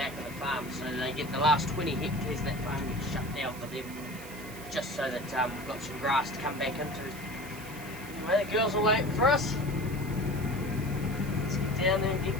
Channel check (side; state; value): right; noise; hiss, 16 dB below the sound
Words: of the farm, so they get the last 20 hectares of that farm gets shut down for them, just so that we've got some grass to come back into. Anyway, the girls are waiting for us. Let's get down there and get